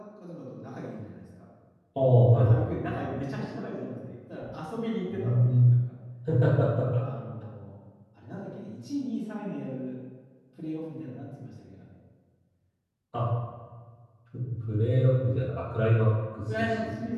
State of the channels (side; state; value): both; identical; correlation 1.00